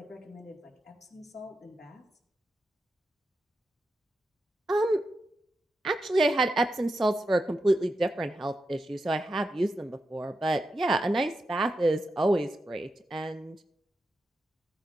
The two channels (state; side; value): normal; both; correlation 0.88